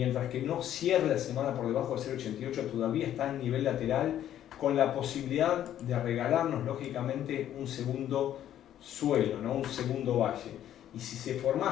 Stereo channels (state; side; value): quieter; right; 11.3 dB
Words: que no cierre la semana por debajo de 0,88, todavía está en nivel lateral, con la posibilidad de regalarnos lógicamente un segundo suelo, ¿no?, un segundo valle. Y si se